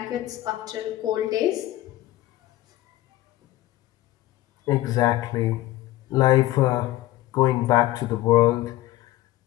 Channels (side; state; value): right; quieter; 15.9 dB